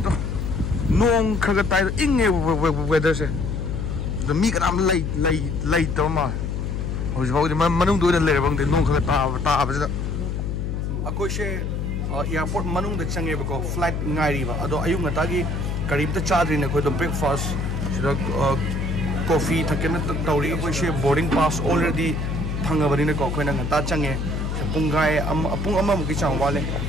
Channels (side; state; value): left; noise; hum, 2 dB below the sound